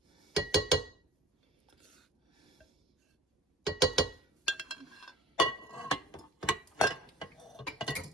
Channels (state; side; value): normal; both; correlation 0.42